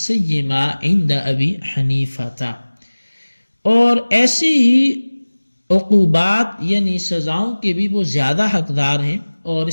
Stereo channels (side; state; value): both; inverted; correlation -1.00